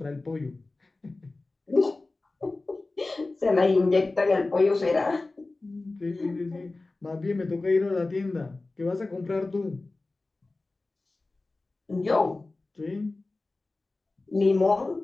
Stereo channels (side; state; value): right; quieter; 3.3 dB